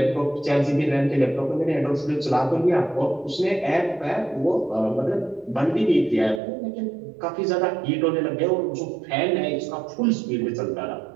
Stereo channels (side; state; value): left; drops out; at 6.4 s